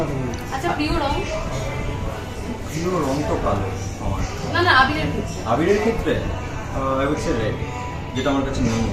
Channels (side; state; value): both; identical; correlation 1.00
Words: আচ্ছা, প্রিয় রং? প্রিয় রং তো কালো আমার। না না, আবিরের ক্ষেত্রে। আবিরের ক্ষেত্রে আই উড সে রেড, যেটা আমার কাছে নেই।